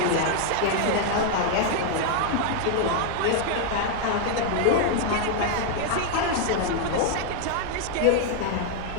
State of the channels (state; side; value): different; both; correlation 0.00